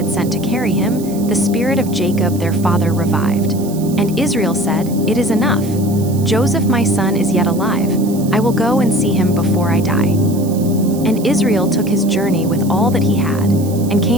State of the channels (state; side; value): noise; right; hiss, 17 dB below the sound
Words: sent to carry him, the spirit of Jacob their father revived. And Israel said, It is enough. Joseph my son is yet alive. I will go and see him before I die. And Israel took his journey with all that he had, and